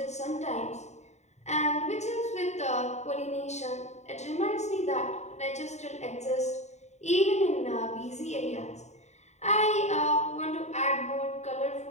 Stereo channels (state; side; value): late; right; 0.33 ms